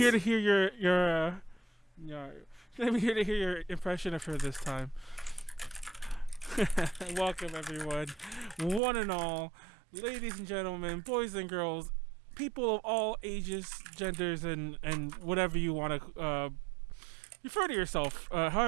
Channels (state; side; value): drops out; left; at 8.8 s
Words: does. to hear your Nyaru. She's not even here to hear your impression of her this time. Welcome everyone, one and all, ladies and gentlemen, boys and girls, people of all ages, genders, and whatever you want to refer to yourself,